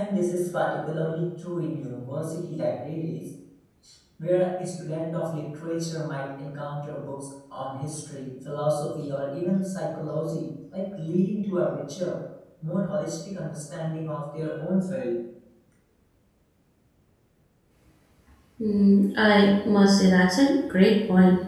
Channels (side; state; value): both; identical; correlation 1.00